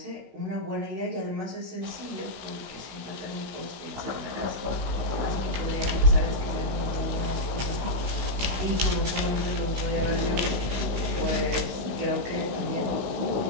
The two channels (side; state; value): left; late; 16 ms